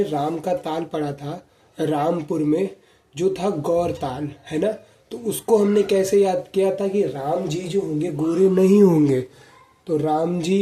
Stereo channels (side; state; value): both; identical; correlation 1.00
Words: राम का ताल पढ़ा था रामपुर में, जो था गौर ताल, है ना। तो उसको हमने कैसे याद किया था कि राम जी जो होंगे गोरे नहीं होंगे। तो राम